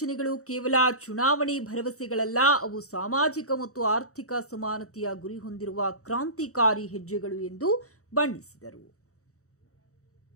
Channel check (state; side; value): late; right; 0.65 ms